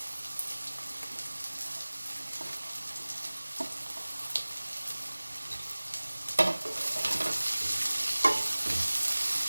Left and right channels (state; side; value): inverted; both; correlation -1.00